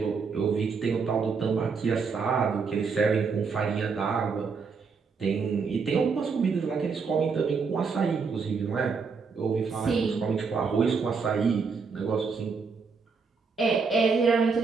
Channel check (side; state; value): left; quieter; 5.2 dB